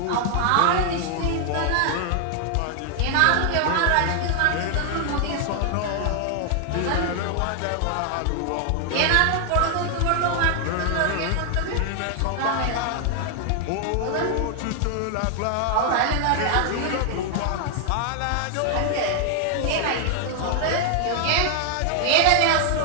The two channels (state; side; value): different; both; correlation 0.00